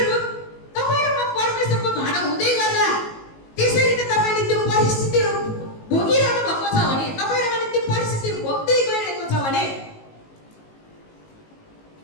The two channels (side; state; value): right; late; 19 ms